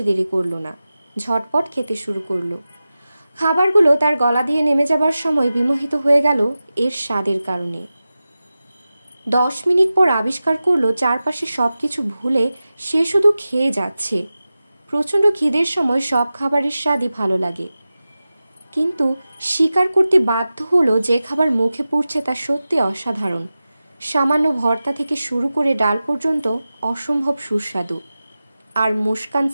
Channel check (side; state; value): both; inverted; correlation -0.95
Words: দেরি করল না। ঝটপট খেতে শুরু করল। খাবারগুলো তার গলা দিয়ে নেমে যাবার সময় বিমোহিত হয়ে গেল এর স্বাদের কারণে। 10 মিনিট পর আবিষ্কার করলো চারপাশে সবকিছু ভুলে সে শুধু খেয়ে যাচ্ছে। প্রচণ্ড খিদের সময় সব খাবারের স্বাদই ভালো লাগে, কিন্তু স্বীকার করতে বাধ্য হলো যে খাবার মুখে পড়ছে তা সত্যি অসাধারণ। সামান্য ভর্তা থেকে শুরু করে ডাল পর্যন্ত অসম্ভব সুস্বাদু। আর মুস্কান